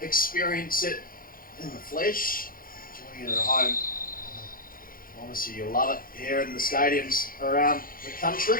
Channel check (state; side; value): late; right; 0.41 ms